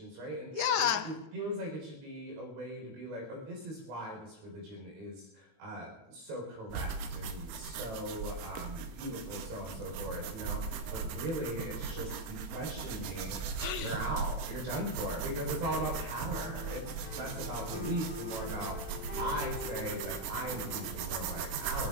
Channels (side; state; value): left; late; 18 ms